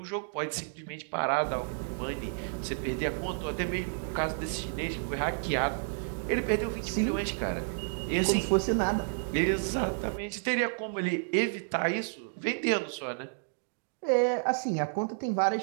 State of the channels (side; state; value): left; silent; digital silence